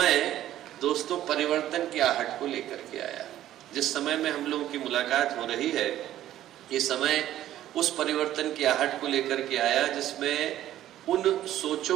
दोस्तों परिवर्तन की आहट को लेकर के आया। जिस समय में हम लोगों की मुलाकात हो रही है, ये समय उस परिवर्तन की आहट को लेकर के आया जिसमें उन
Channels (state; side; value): quieter; left; 12.9 dB